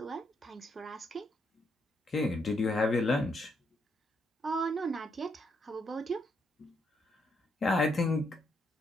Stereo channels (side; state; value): both; normal; correlation 0.76